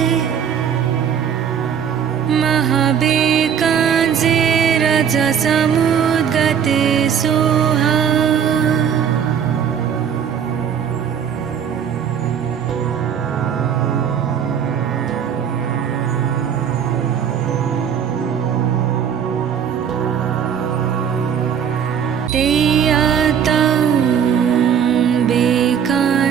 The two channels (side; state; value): left; quieter; 8.1 dB